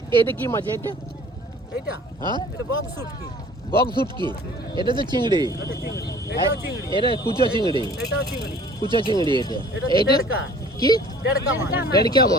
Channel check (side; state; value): both; normal; correlation 0.49